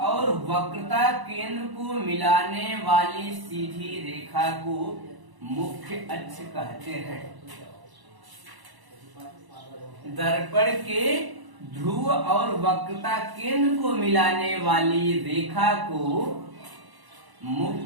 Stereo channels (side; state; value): left; late; 1.0 ms